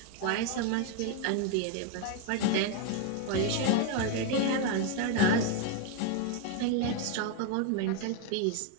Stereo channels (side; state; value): both; different; correlation 0.01